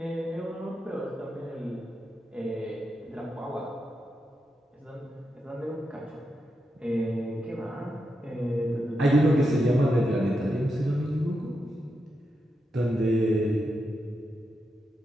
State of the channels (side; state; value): both; normal; correlation 0.86